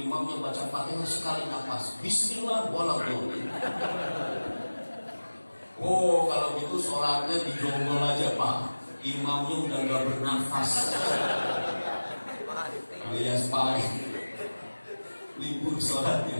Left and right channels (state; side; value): inverted; both; correlation -1.00